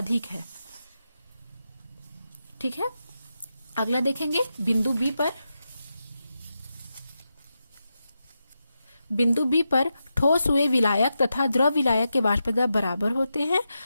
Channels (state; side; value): inverted; both; correlation -0.88